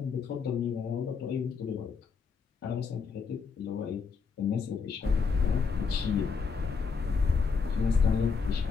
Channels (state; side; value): quieter; right; 5.3 dB